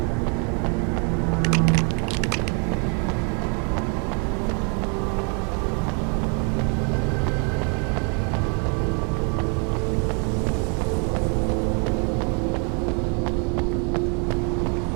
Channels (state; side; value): quieter; left; 36.2 dB